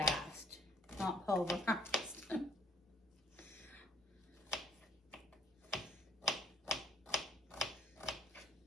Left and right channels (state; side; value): normal; both; correlation 0.62